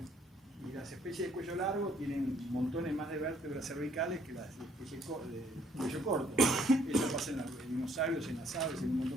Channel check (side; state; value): both; normal; correlation 0.65